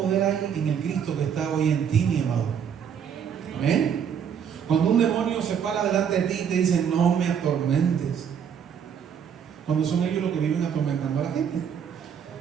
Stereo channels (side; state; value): left; quieter; 7.8 dB